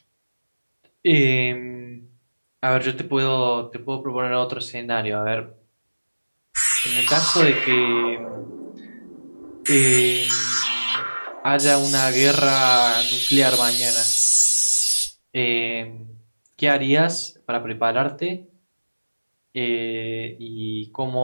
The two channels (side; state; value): both; inverted; correlation -1.00